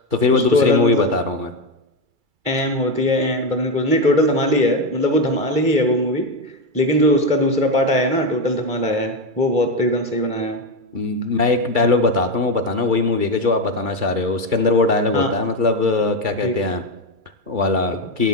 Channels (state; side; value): late; left; 2.3 ms